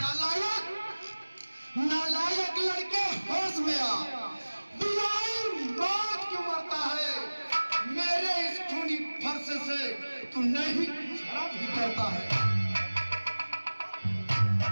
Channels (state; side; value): inverted; both; correlation -1.00